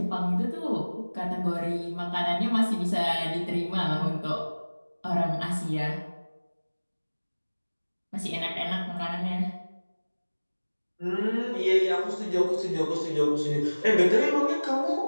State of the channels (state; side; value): inverted; both; correlation -1.00